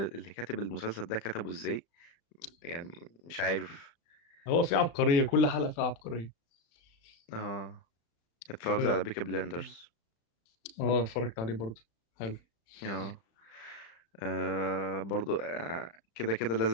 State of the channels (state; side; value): late; right; 35 ms